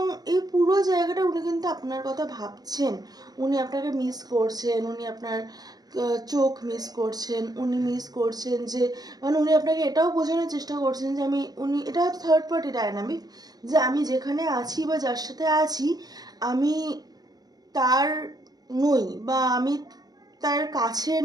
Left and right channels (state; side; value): late; left; 0.19 ms